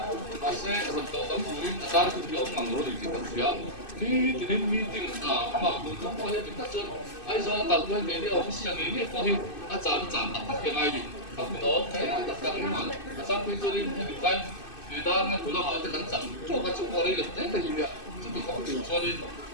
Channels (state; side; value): late; right; 2.6 ms